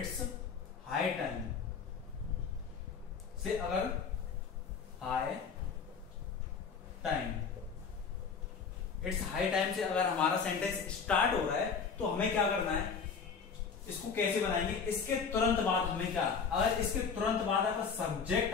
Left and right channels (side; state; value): right; quieter; 5.9 dB